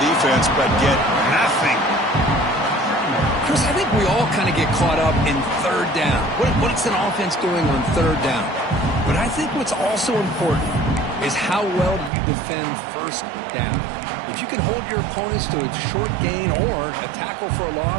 defense, but get nothing. Chris, I think we all kind of get caught up in third down. What's an offense doing on third down? But I think what's also important is how well do you defend first down. If you can hold your opponents to a short gain or a tackle for a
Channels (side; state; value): left; drops out; at 12.1 s